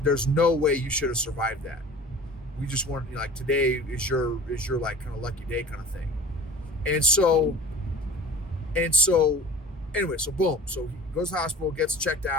no way you should have survived that. We just want today is your kind of lucky day kind of thing." And so anyway, so boom. So he goes to the hospital, gets checked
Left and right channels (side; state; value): both; normal; correlation 0.41